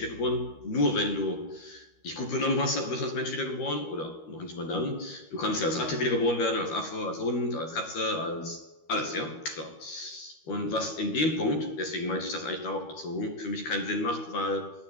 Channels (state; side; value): late; right; 13 ms